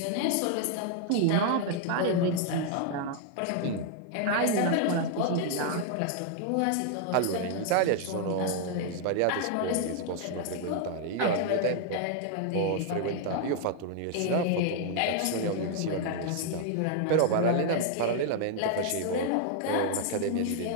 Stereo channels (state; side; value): different; both; correlation 0.00